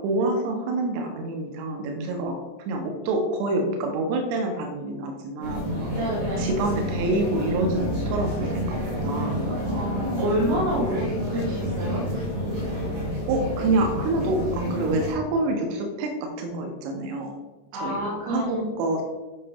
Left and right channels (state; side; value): late; left; 29 ms